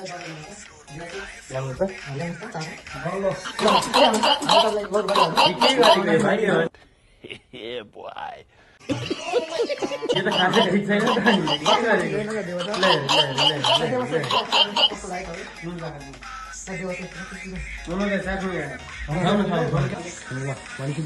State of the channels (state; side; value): identical; both; correlation 1.00